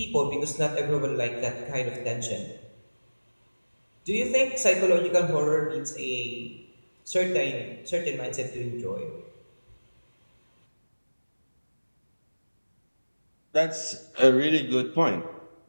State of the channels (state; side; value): inverted; both; correlation -1.00